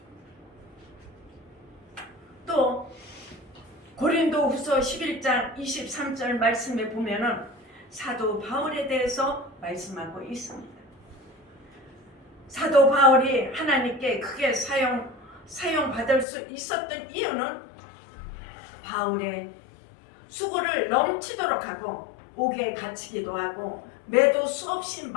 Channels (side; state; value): right; drops out; at 16.2 s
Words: 또 고린도후서 11장 23절 말씀에 보면은 사도 바울에 대해서 말씀하고 있습니다. 사도 바울이 하나님께 크게 사용받을 수 있었던 이유는 바울의 수고를 넘치도록 하고 옥에 갇히기도 하고 매도 수없이